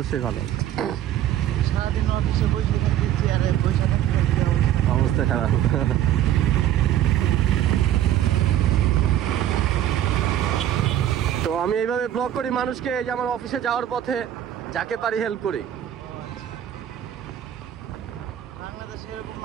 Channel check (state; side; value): quieter; left; 11.7 dB